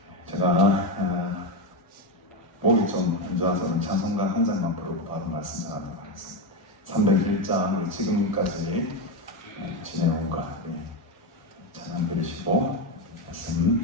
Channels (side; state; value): both; normal; correlation 0.11